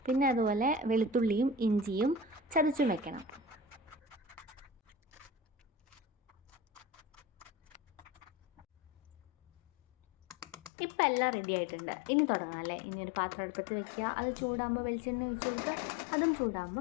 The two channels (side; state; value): right; drops out; at 10.7 s